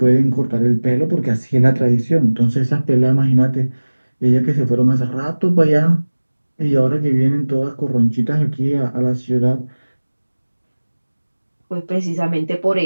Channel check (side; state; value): both; inverted; correlation -1.00